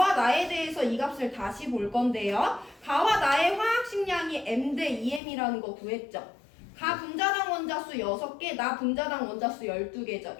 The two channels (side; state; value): right; drops out; at 5.2 s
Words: 나에 대해서 이 값을 다시 볼 건데요. 가와 나의 화학식량이 m 대 2m이라는 거 구했죠. 가 분자당 원자수 6개, 나 분자당 원자수 12개죠.